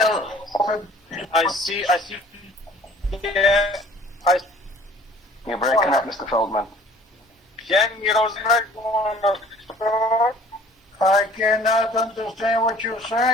I see, You're breaking up, Mr. Feldman. Jamie Rosenberg, I cannot understand what you're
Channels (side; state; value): both; normal; correlation 0.51